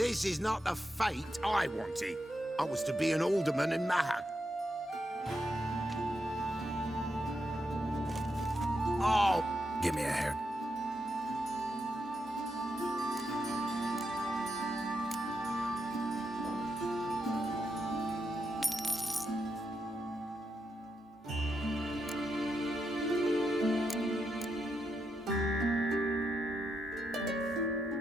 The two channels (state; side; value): normal; both; correlation 0.84